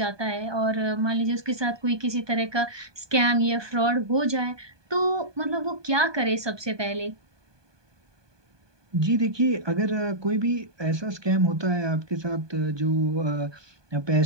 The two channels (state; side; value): late; left; 1.2 ms